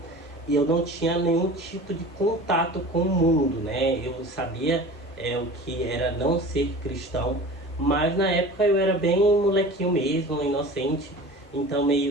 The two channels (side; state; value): both; normal; correlation 0.38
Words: e eu não tinha nenhum tipo de contato com o mundo, né? Eu sabia o que era não ser cristão, mas na época eu era bem molequinho mesmo, inocente, então